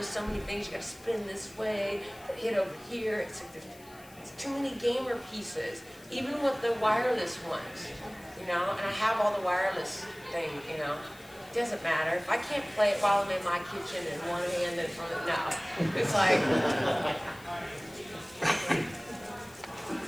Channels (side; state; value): left; noise; hiss, 23 dB below the sound